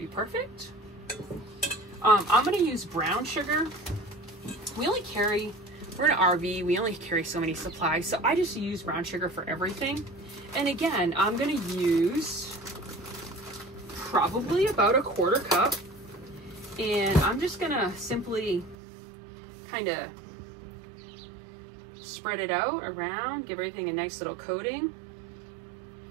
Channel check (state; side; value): drops out; left; at 18.8 s